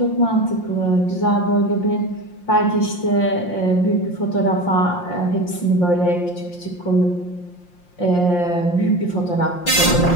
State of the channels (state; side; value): late; right; 5.7 ms